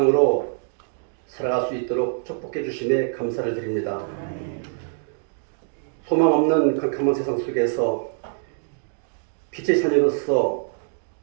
살아갈 수 있도록 축복해 주심에 감사를 드립니다. 소망 없는 캄캄한 세상 속에서 빛의 자녀로서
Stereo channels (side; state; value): left; silent; digital silence